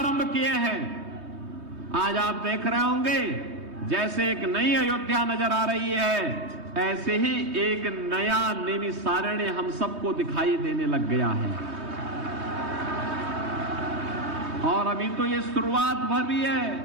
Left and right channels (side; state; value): left; late; 3.2 ms